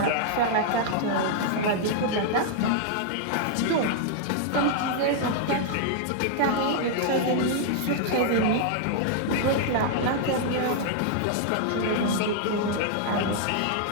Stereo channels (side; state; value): both; different; correlation -0.01